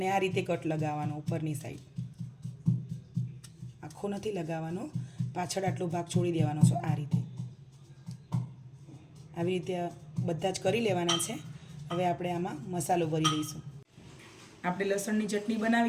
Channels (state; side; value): identical; both; correlation 1.00